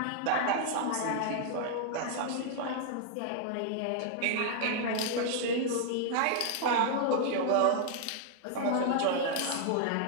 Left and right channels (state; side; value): different; both; correlation 0.00